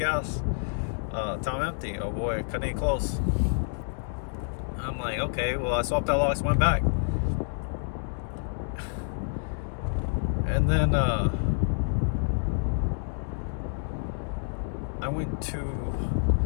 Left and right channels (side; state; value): right; silent; digital silence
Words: Time empty. Oh boy, cutting it close. I'm like, okay, well, I swapped out locks, went back. And then I went to